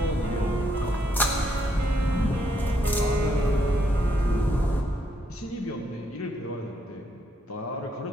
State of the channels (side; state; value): both; normal; correlation 0.75